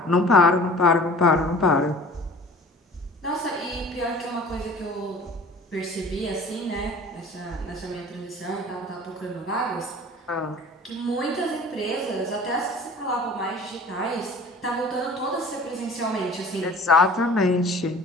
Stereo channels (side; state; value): both; normal; correlation 0.45